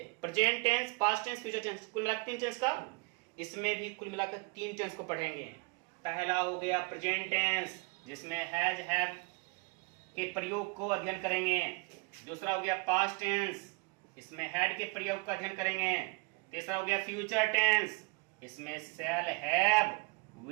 present tense, past tense, future tense, कुल मिलाकर 3 टेंस का। इसमें भी कुल मिलाकर 3 टेंस को पढ़ेंगे। पहला हो गया प्रेजेंट टेंस, जिसमें हैज हैव के प्रयोग को अध्ययन करेंगे। दूसरा हो गया पास्ट टेंस, इसमें हैड के प्रयोग का अध्ययन करेंगे। तीसरा हो गया फ्यूचर टेंस, इसमें शैल हैव,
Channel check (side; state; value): left; quieter; 28.5 dB